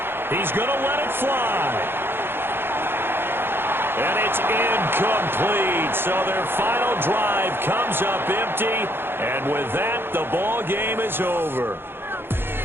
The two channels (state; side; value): late; left; 0.10 ms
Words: He's going to let it fly. And it's incomplete. So their final drive comes up empty. And with that, the ball game is over.